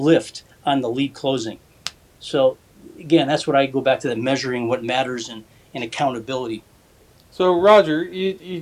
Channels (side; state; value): both; identical; correlation 1.00